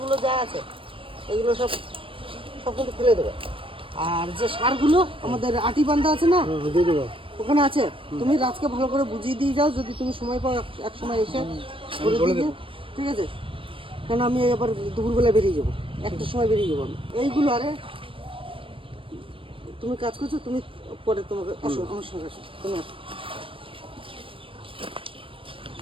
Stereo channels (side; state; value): left; late; 0.25 ms